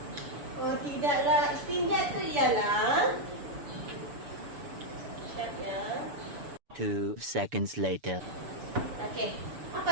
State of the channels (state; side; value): late; left; 7.0 ms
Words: Oh, tidaklah. Istinja tu ialah... Sekejap ya. 2 seconds later. Okey.